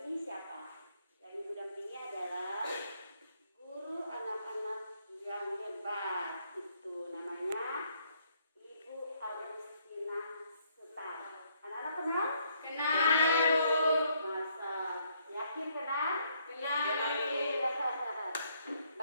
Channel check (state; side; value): inverted; both; correlation -0.70